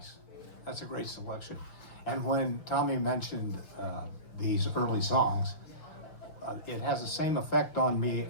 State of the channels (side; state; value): right; late; 6.0 ms